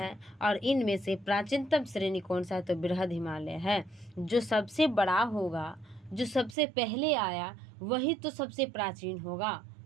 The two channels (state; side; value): drops out; left; at 6.6 s